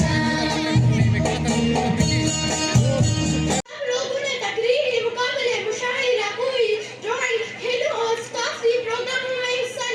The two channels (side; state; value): both; identical; correlation 1.00